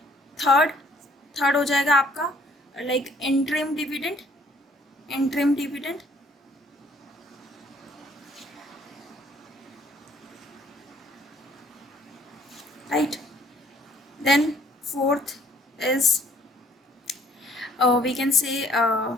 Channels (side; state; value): both; normal; correlation 0.61